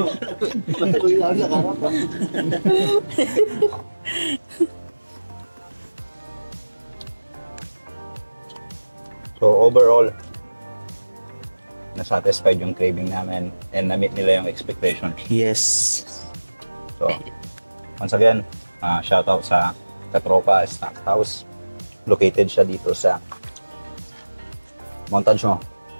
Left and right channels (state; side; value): inverted; both; correlation -1.00